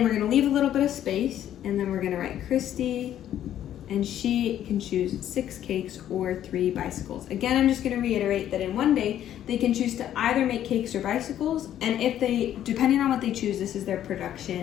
we're gonna leave a little bit of space, and then we're gonna write Christy, and she can choose 6 cakes or 3 bicycles. Again, I'm just gonna reiterate that in one day, they can choose to either make cakes or bicycles, and if they, depending on what they choose, this is their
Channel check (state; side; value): quieter; right; 11.2 dB